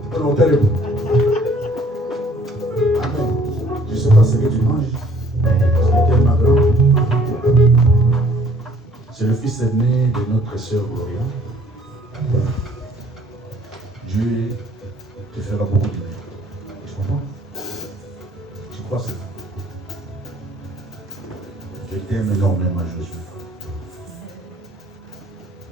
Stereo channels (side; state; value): both; normal; correlation 0.58